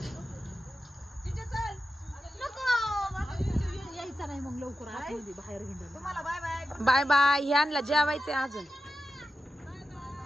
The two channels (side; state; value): both; normal; correlation 0.91